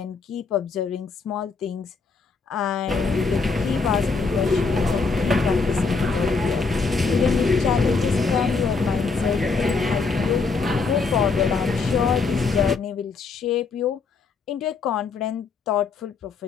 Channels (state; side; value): quieter; right; 4.6 dB